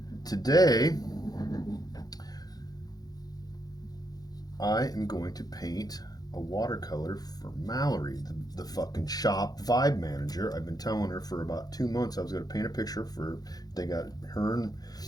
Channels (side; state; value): right; late; 0.19 ms